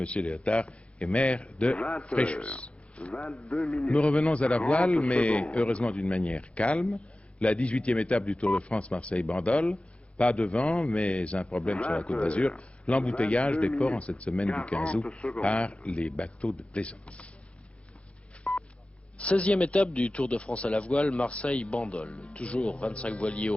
Léotard est maire de Fréjus. Nous revenons à la voile, mais heureusement d'une manière calme. La 18e étape du Tour de France Marseille-Bandol. Pas de vent, mais un problème sur la Côte d'Azur. L'embouteillage des ports en cette semaine du 15 août par les bateaux de plaisance. 16e étape du Tour de France à la voile, Marseille-Bandol. Toujours 25 voiliers au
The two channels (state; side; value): late; right; 0.061 ms